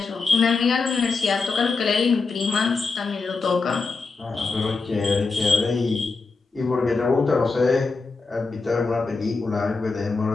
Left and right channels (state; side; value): quieter; right; 4.2 dB